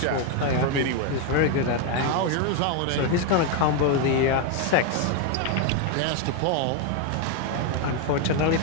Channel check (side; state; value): both; different; correlation 0.01